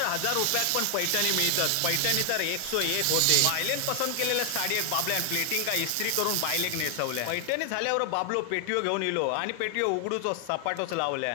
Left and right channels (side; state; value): both; different; correlation 0.00